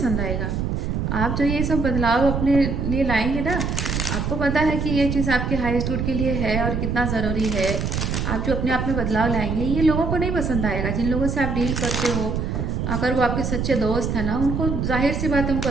आएगा। आप जो ये सब बदलाव अपने लिए लाएंगे ना, आपको पता है कि ये चीज़ आपके हाईएस्ट गुड के लिए है और कितना ज़रूरी है। आप जो अपने आप में बदलाव लाएंगे ये लोगों को नहीं पसंद आएगा। जिन लोगों से आप डील करते हो, अगर वो आपके सच्चे दोस्त हैं ना, उनको जाहिर सी बात है, उनको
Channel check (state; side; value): noise; right; rumble, 1 dB below the sound